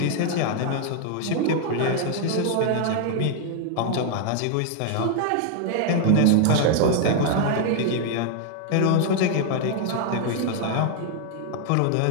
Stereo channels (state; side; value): different; both; correlation 0.00